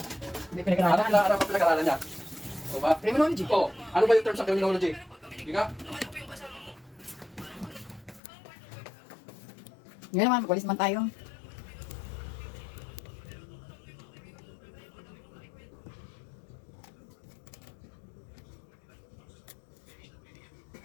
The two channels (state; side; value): drops out; right; at 8.2 s